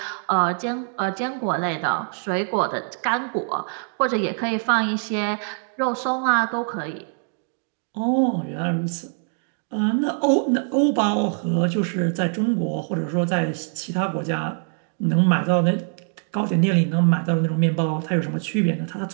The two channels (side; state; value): left; silent; 57 dB below the other